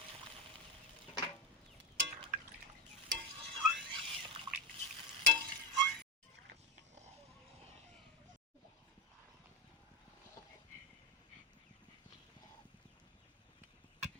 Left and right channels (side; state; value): both; normal; correlation 0.16